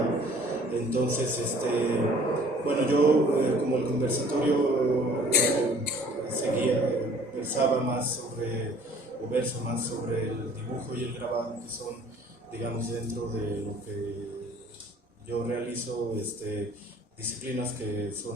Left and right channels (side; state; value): both; normal; correlation 0.53